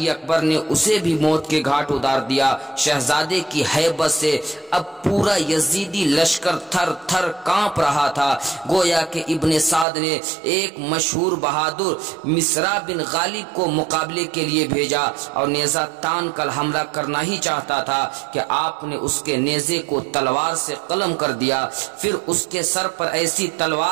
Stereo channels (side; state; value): left; drops out; at 9.9 s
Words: اکبر نے اسے بھی موت کے گھاٹ اتار دیا۔ شہزادے کی ہیبت سے اب پورا یزیدی لشکر تھر تھر کانپ رہا تھا، گویا کہ ابن سعد نے ایک مشہور بہادر مصرع بن غالب کو مقابلے کے لیے بھیجا اور نیزہ تان کر حملہ کرنا ہی چاہتا تھا کہ آپ نے اس کے نیزے کو تلوار سے قلم کر دیا، پھر اس کے سر پر ایسی